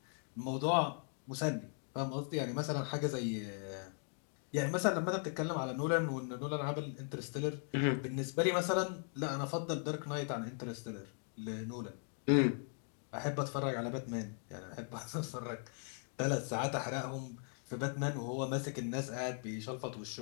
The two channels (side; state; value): right; silent; 52 dB below the other